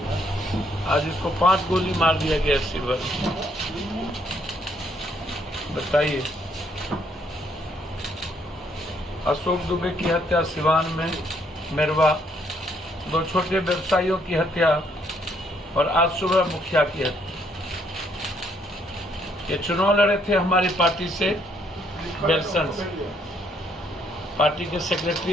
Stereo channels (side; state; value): both; normal; correlation 0.70